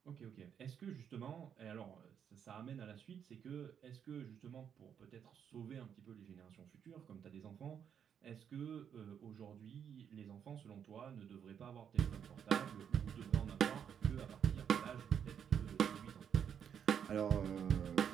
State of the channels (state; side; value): quieter; left; 8.2 dB